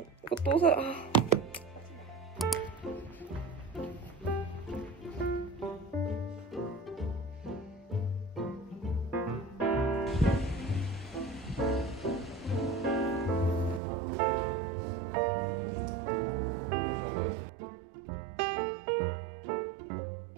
이거 또 사...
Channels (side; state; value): left; drops out; at 13.8 s